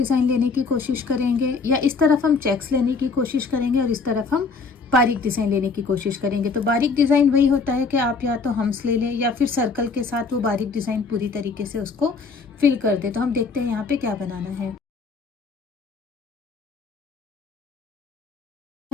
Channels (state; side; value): quieter; right; 4.6 dB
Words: लेने की कोशिश करेंगे, या इस तरफ हम चेक्स लेने की कोशिश करेंगे और इस तरफ हम बारीक डिज़ाइन लेने की कोशिश करेंगे। तो बारीक डिज़ाइन वही होता है कि आप या तो हम्स ले लें या फिर सर्कल के साथ वो बारीक डिज़ाइन पूरी तरीके से उसको फिल कर दे। तो हम देखते हैं यहाँ पे क्या बनाना है।